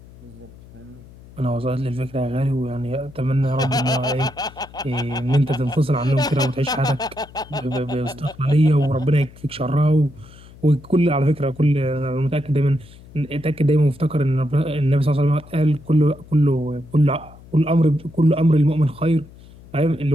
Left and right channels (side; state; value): left; noise; hum, 21 dB below the sound